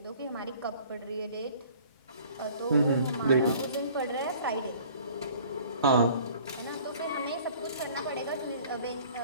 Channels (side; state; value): both; inverted; correlation -0.52